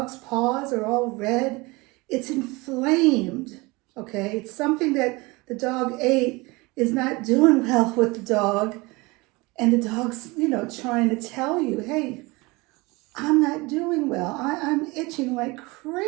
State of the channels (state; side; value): quieter; left; 24.2 dB